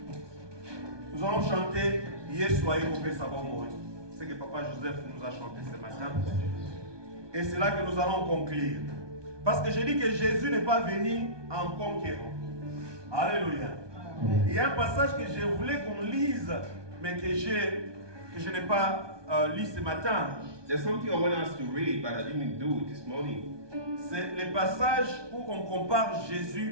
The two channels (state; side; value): late; left; 1.2 ms